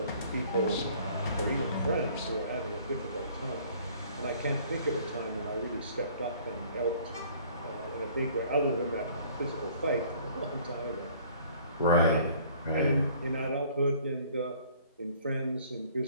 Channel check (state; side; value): inverted; both; correlation -0.55